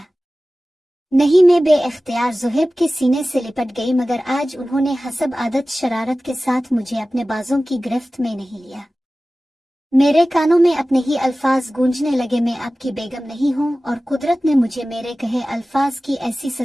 नहीं, मैं बेइख्तियार ज़ोहैब के सीने से लिपट गई मगर आज उन्होंने हसब आदत शरारत के साथ मुझे अपने बाजों की गिरफ्त में नहीं लिया। मेरे कानों में अपने ही अल्फाज गूंजने लगे, मैं आपकी बेगम नहीं हूँ और कुदरत ने मुझे मेरे कहे अल्फाज की ऐसी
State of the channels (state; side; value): normal; both; correlation 0.96